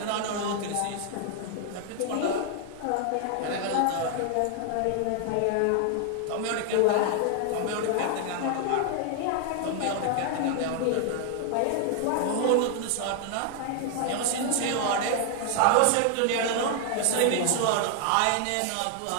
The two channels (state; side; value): different; both; correlation 0.00